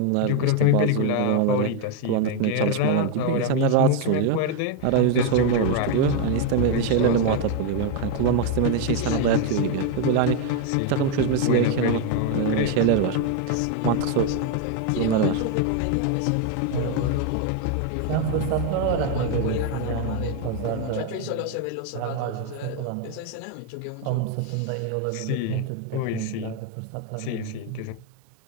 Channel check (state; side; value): different; both; correlation 0.01